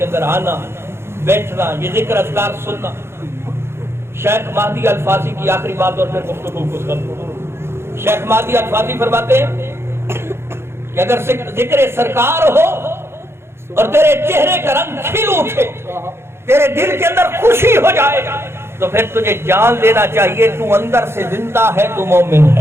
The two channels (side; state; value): left; late; 0.12 ms